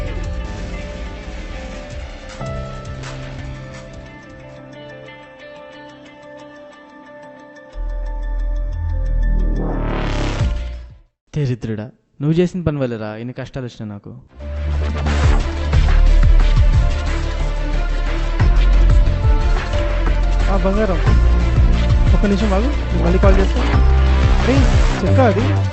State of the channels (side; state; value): both; identical; correlation 1.00